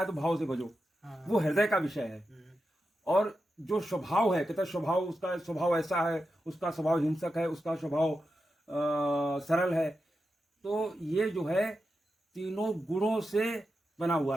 तो भाव से भजो, वो हृदय का विषय है। और जो स्वभाव है, कहते स्वभाव, उसका स्वभाव ऐसा है, उसका स्वभाव हिंसक है, उसका स्वभाव सरल है। तो ये जो है तीनों गुणों से बना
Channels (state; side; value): normal; both; correlation 0.89